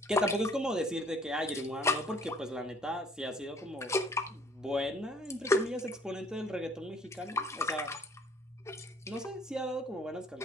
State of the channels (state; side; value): normal; both; correlation 0.57